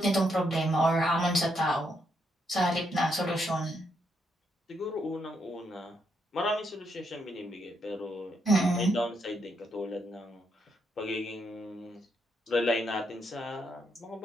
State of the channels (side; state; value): both; normal; correlation 0.78